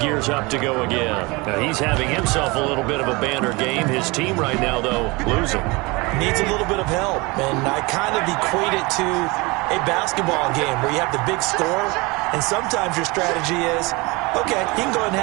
up to go again. Now, he's having himself a little bit of a banner game. His team right now, though, losing. Needs a little bit of help, and I kind of equate it to a basketball game where you have the big score, and sometimes your strategy is, okay, he can go ahead and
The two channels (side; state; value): left; quieter; 25.2 dB